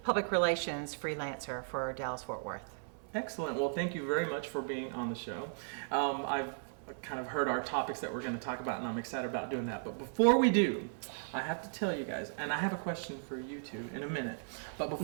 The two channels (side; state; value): left; silent; 54 dB below the other